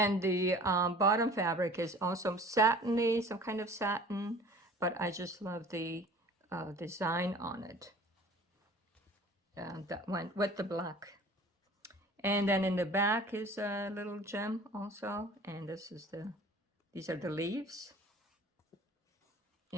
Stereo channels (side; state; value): both; normal; correlation 0.46